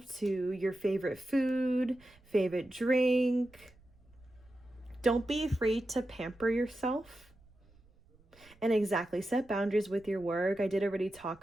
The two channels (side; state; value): right; noise; rumble, 28 dB below the sound